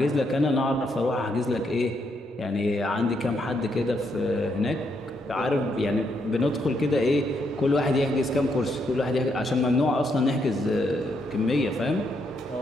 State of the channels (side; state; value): both; normal; correlation 0.77